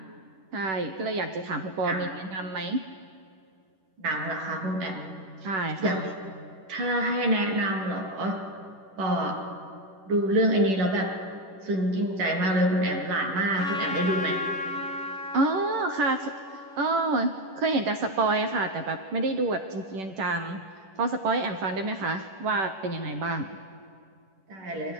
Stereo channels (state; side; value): late; left; 11 ms